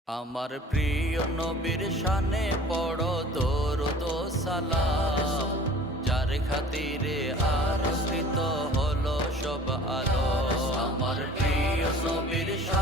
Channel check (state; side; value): normal; both; correlation 0.46